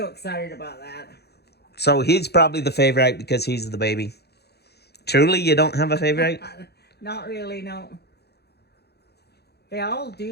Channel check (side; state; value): right; late; 0.48 ms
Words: excited about that. So he's probably the favorite because he's the baby. Truly, you don't have a favorite? Not really, no. They all